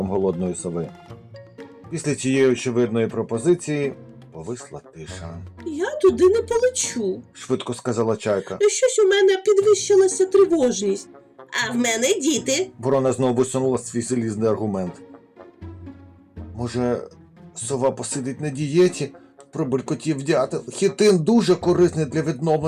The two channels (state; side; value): identical; both; correlation 1.00